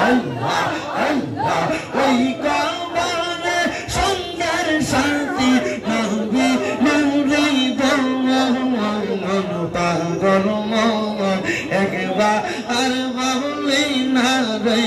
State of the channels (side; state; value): both; identical; correlation 1.00